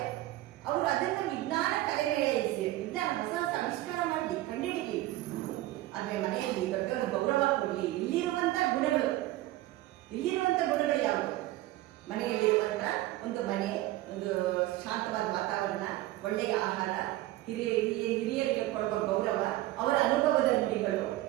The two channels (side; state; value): left; quieter; 16.6 dB